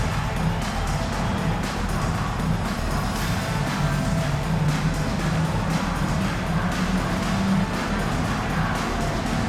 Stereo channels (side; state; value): both; identical; correlation 1.00